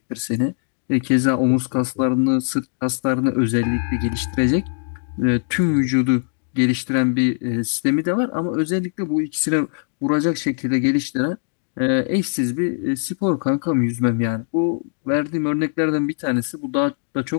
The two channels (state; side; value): silent; right; 63 dB below the other